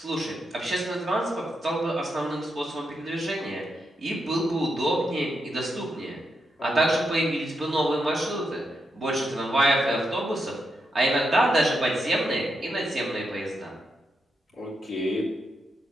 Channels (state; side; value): normal; both; correlation 0.84